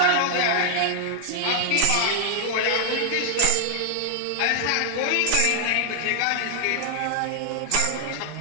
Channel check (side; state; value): both; different; correlation 0.00